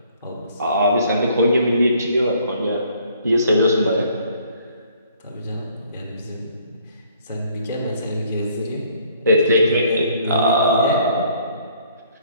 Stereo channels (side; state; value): both; inverted; correlation -0.61